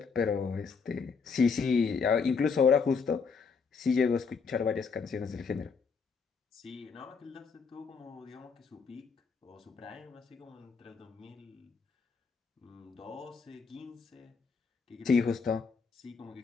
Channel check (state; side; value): quieter; right; 5.3 dB